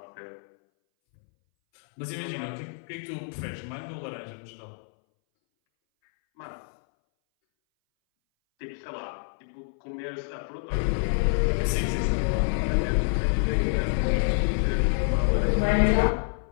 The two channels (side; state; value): right; silent; 60 dB below the other